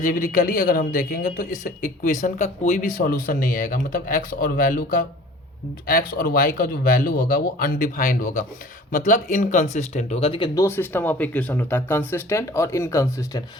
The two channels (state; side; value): normal; both; correlation 0.47